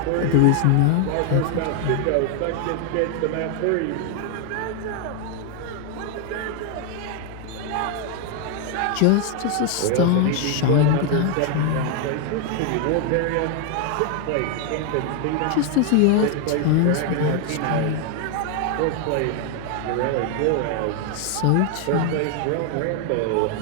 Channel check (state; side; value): different; both; correlation 0.00